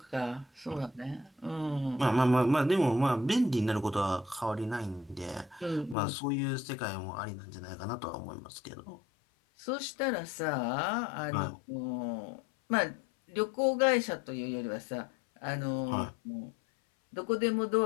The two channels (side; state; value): right; drops out; at 6.0 s